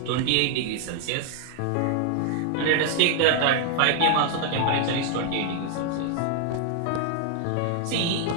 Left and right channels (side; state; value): both; different; correlation 0.00